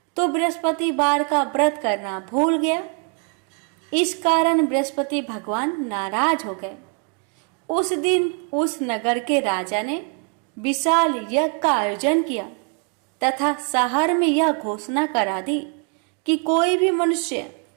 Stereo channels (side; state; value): left; quieter; 37.2 dB